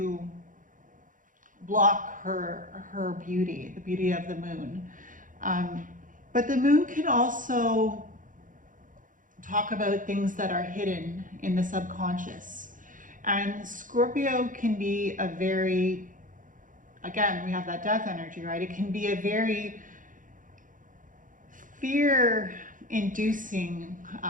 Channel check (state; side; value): late; left; 0.38 ms